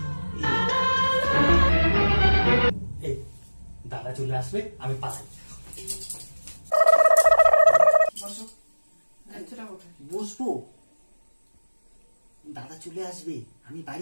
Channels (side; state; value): both; inverted; correlation -1.00